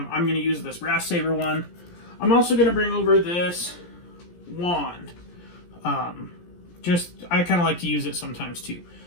going to use this brass saber one. I'm also going to bring over this wand. I kind of like to use it sometimes too.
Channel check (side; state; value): right; late; 17 ms